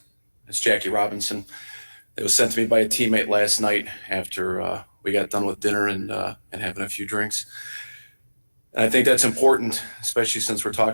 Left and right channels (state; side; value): inverted; both; correlation -1.00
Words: It's Jackie Robinson. It was sent to me by a teammate last night after we got done with dinner and having a few drinks. And I think that's important, especially since we're